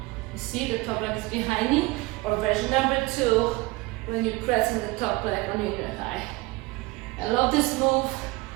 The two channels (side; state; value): left; quieter; 21.9 dB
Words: see the top leg is behind me. Or version number 2, when you're pressing the top leg on your inner thigh. I love this move